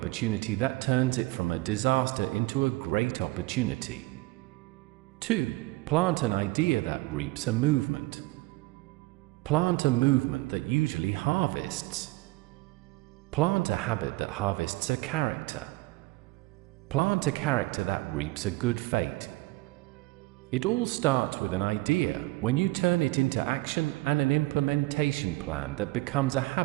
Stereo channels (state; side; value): quieter; left; 21.7 dB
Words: that turns it from a disaster into a great opportunity. 2. Plant an idea that reaps a movement. Plant a movement that usually harvests. Plant a habit that harvests a character. Plant a character that reaps a good fate. It all starts with an idea, when you turn it into action and an implementation plan that becomes a